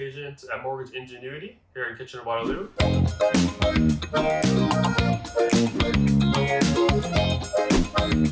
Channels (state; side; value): identical; both; correlation 1.00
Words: agent at Mortgage Ingenuity here in Kitchener, Waterloo.